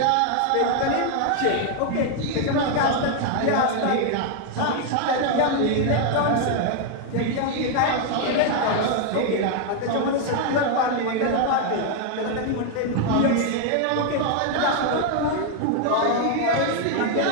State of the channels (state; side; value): different; both; correlation 0.00